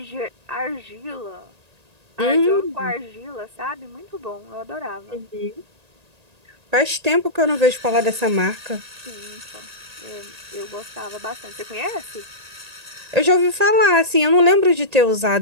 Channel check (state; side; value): late; left; 1.8 ms